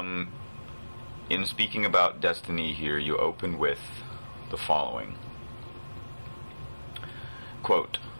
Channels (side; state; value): both; inverted; correlation -1.00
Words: In speaking about Destiny here, you open with the following. Quote,